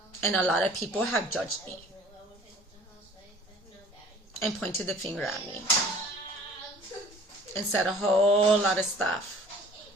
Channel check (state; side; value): normal; both; correlation 0.50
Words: And a lot of people have judged me and pointed the finger at me and said a whole lot of stuff.